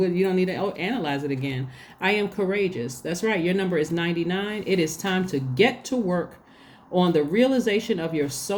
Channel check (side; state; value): both; identical; correlation 1.00